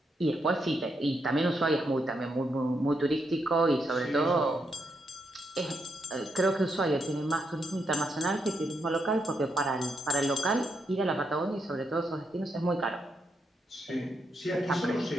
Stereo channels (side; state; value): both; normal; correlation 0.80